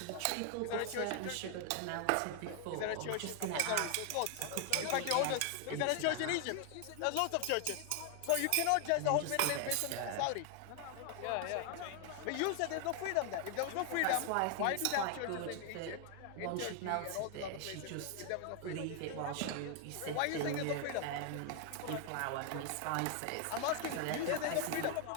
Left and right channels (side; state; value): both; different; correlation 0.00